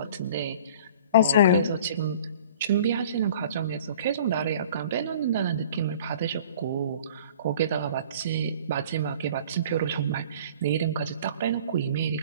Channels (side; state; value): both; inverted; correlation -0.47